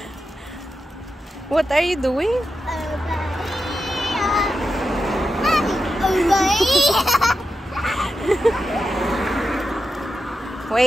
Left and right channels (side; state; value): both; normal; correlation 0.89